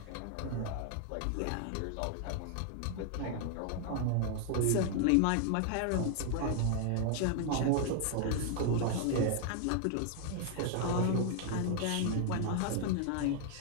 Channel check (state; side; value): different; both; correlation 0.00